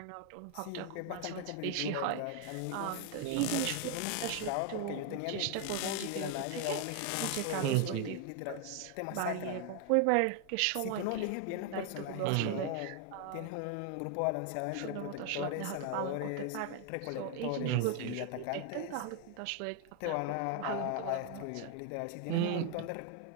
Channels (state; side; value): different; both; correlation 0.00